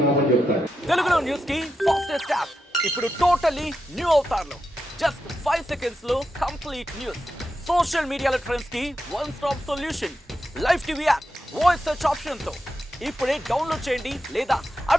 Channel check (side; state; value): both; normal; correlation 0.88